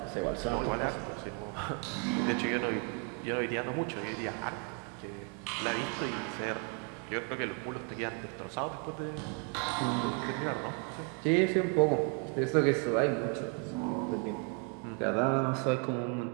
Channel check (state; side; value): quieter; left; 37.0 dB